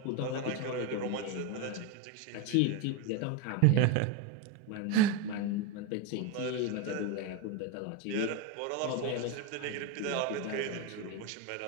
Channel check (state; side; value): different; both; correlation 0.03